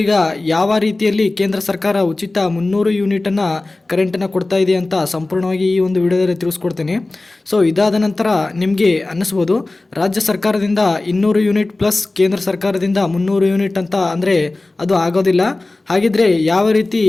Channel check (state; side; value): quieter; right; 3.0 dB